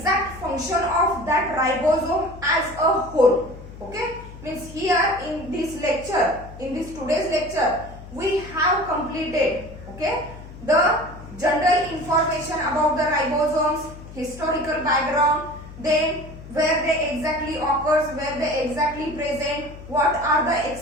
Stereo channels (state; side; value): noise; left; hum, 15 dB below the sound